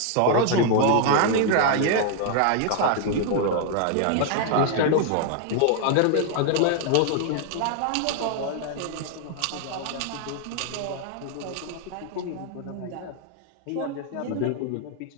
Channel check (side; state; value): both; different; correlation 0.00